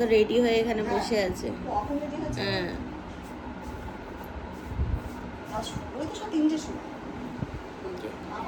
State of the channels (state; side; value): identical; both; correlation 1.00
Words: রেডি হয়ে এখানে বসে আছে। হ্যাঁ